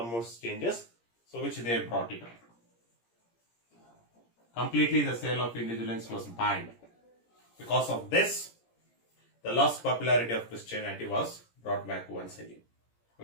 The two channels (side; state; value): right; late; 17 ms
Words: changes. So which they brought it up. Completely the sale of indulgence was banned. Because of this, the lost popularity of Christianity was brought back once again.